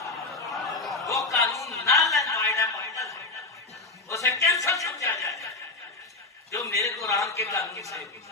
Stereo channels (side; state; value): right; quieter; 3.2 dB